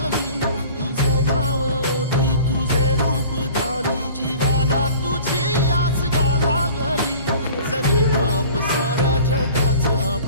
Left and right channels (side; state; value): both; inverted; correlation -0.45